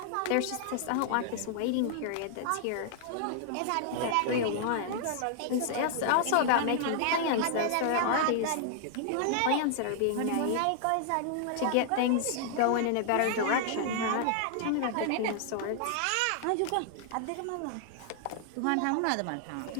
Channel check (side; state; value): both; different; correlation -0.01